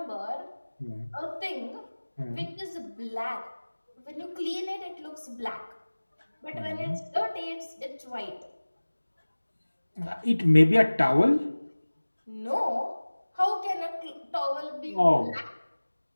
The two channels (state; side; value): inverted; both; correlation -1.00